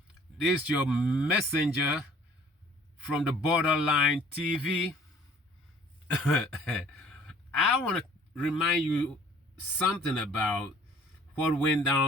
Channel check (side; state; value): both; normal; correlation 0.54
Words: this is your messenger from the Borderline TV. I want to remind you something about what went